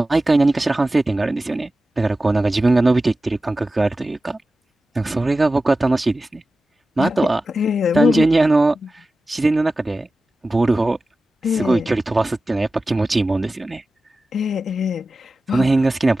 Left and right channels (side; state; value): both; normal; correlation 0.95